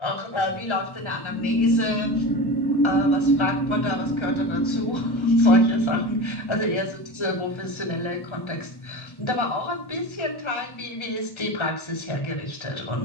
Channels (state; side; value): late; right; 1.3 ms